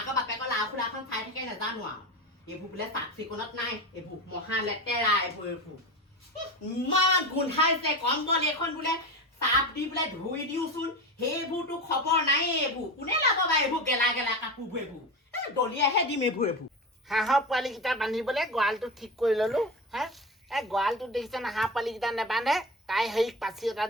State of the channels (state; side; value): normal; both; correlation 0.25